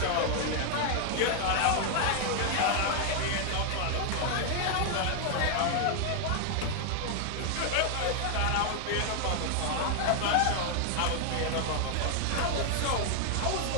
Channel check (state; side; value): different; both; correlation 0.00